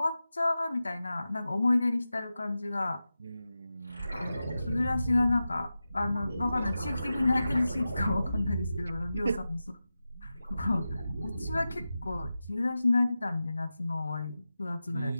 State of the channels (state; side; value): inverted; both; correlation -0.93